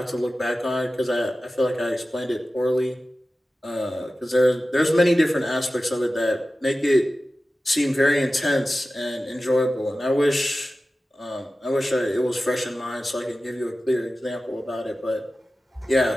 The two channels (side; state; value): both; normal; correlation 0.95